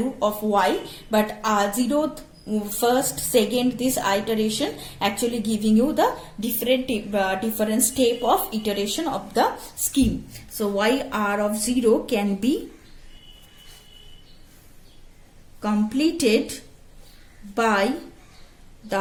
of y, but 0th, first, second, this iteration actually giving you the different step of iteration of the scheme. So y r of 0 can be completed by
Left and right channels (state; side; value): identical; both; correlation 1.00